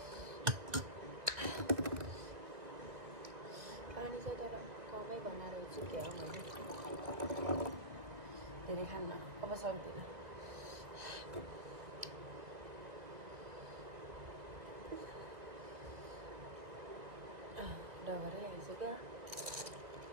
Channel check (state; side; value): late; left; 2.1 ms